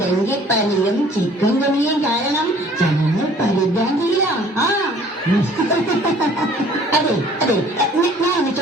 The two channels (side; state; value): both; normal; correlation 0.53